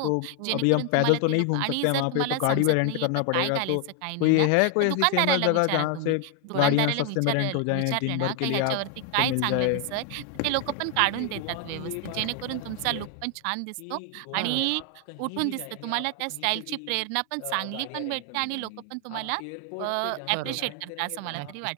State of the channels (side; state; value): both; different; correlation 0.00